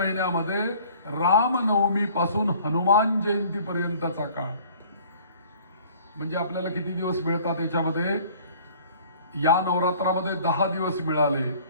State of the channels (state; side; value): inverted; both; correlation -0.52